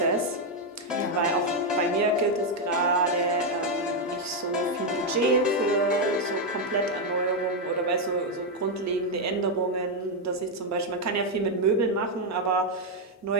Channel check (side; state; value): both; normal; correlation 0.02